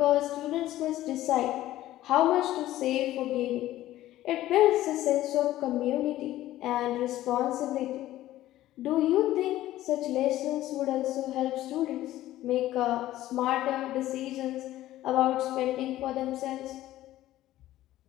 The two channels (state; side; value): quieter; right; 14.6 dB